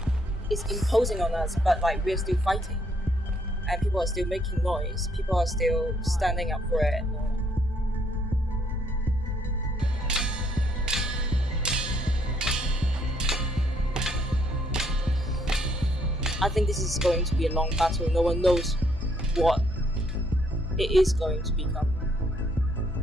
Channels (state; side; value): normal; both; correlation 0.69